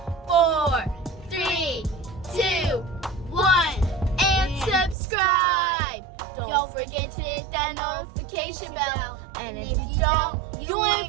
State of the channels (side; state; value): left; drops out; at 5.0 s